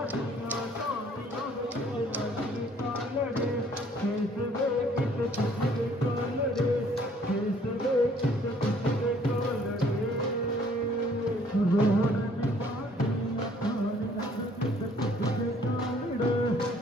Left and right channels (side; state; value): both; normal; correlation 0.60